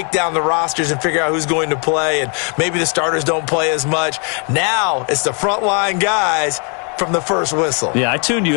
down the rosters and figure out who's going to play, and maybe the starters don't play as much. Now it's the frontline guys from the first whistle. Yeah, I tuned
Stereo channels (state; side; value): quieter; right; 38.6 dB